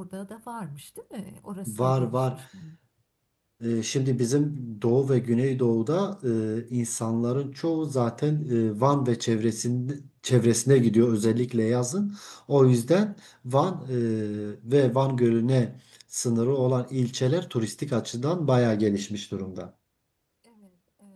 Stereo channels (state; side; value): identical; both; correlation 1.00